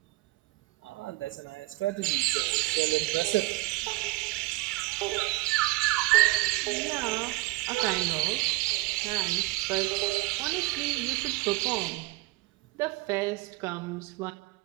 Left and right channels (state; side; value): quieter; left; 21.8 dB